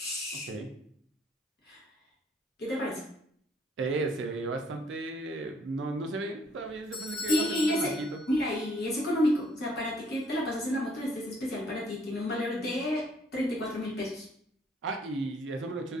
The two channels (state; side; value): normal; both; correlation 0.63